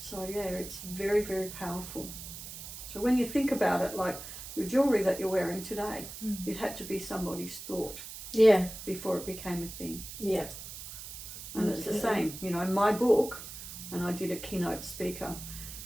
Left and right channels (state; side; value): noise; right; hiss, 11 dB below the sound